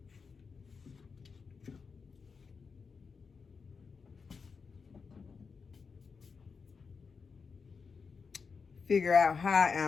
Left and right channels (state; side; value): quieter; right; 5.3 dB